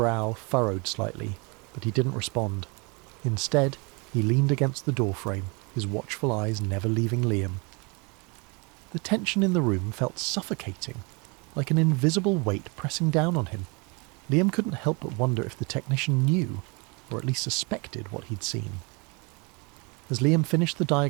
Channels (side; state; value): left; quieter; 30.2 dB